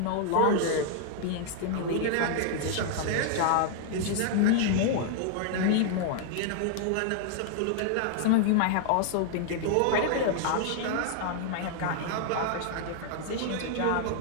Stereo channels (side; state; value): both; different; correlation -0.01